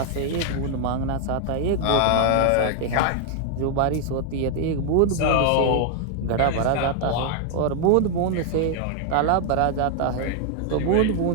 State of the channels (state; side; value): different; both; correlation 0.00